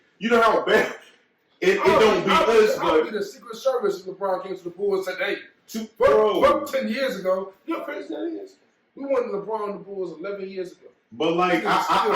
You know how bad it don't beat us, but I'll be the Secret Service if LeBron came to the Bulls and said, "Hey, fuck 10 years ago." You know how crazy that is? We won LeBron and the Bulls 11 years ago. But like,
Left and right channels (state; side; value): identical; both; correlation 1.00